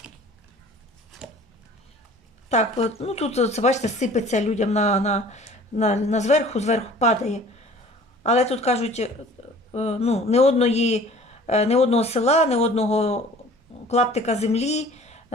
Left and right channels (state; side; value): normal; both; correlation 0.48